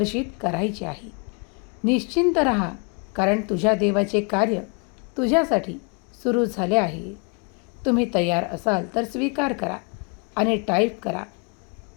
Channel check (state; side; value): quieter; right; 35.1 dB